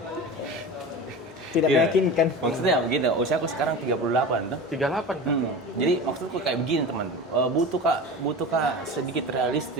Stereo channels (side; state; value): both; normal; correlation 0.31